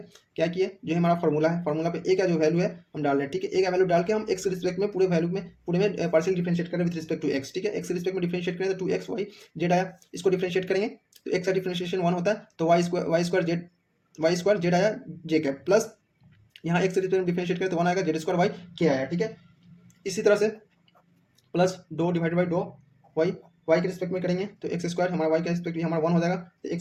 क्या किए, जो हमारा फॉर्मूला है, फॉर्मूला पे ए का जो वैल्यू है हम डाल रहे हैं, ठीक है। ए का वैल्यू डाल के हम एक्स के रिस्पेक्ट में पूरे वैल्यू में पूरे में पार्शियल डिफरेंशिएट करें विद रिस्पेक्ट टू एक्स, ठीक है। एक्स के रिस्पेक्ट में डिफरेंशिएट करें तो 2x y z आया, इसको डिफरेंशिएट करेंगे तो एक्स का डिफरेंशिएशन 1 होता है, तो वाई स्क्वायर जेड आया जे कैप प्लस यहाँ एक्स के रिस्पेक्ट में डिफरेंशिएट करें तो 1 आएगा जेड स्क्वायर वाई के आया, ठीक है। इसी तरह से plus dough divide by dough y के रिस्पेक्ट में करेंगे तो एक्स स्क्वायर हमारा वाई का रिस्पेक्ट भी हमारा 1 हो जाएगा, तो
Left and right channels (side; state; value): both; identical; correlation 1.00